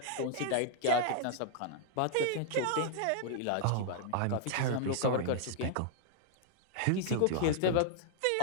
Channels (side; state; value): both; different; correlation -0.01